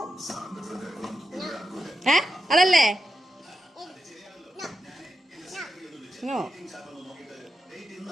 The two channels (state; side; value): normal; both; correlation 0.87